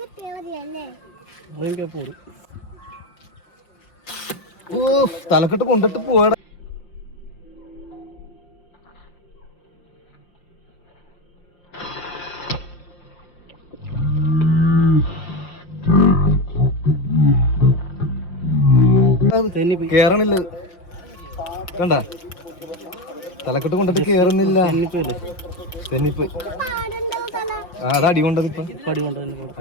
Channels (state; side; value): late; right; 5.7 ms